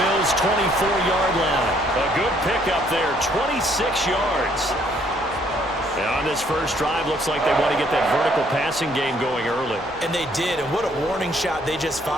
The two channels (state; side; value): normal; both; correlation 0.66